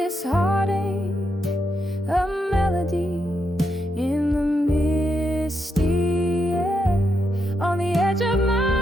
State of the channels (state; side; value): normal; both; correlation 0.82